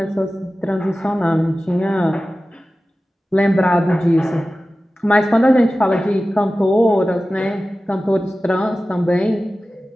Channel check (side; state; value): both; normal; correlation 0.95